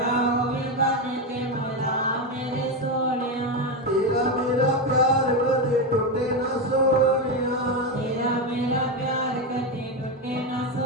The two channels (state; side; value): normal; both; correlation 0.11